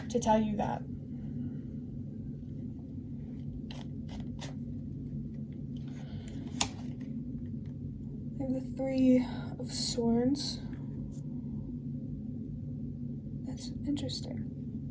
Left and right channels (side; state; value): both; identical; correlation 1.00